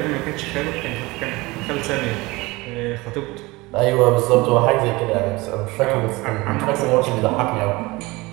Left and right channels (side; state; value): left; quieter; 22.3 dB